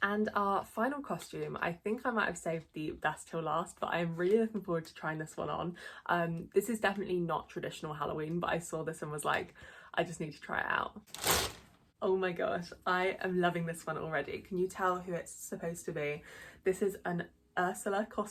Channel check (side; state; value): both; identical; correlation 1.00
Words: And our final costume, I think I might have saved the best till last, but I'm really looking forward to trying this one on. This is definitely not traditional Halloween, but I saw this and was like, I just need to try it out. Oh my gosh, I am loving this one already. Can you tell who it's supposed to be? This is an Ursula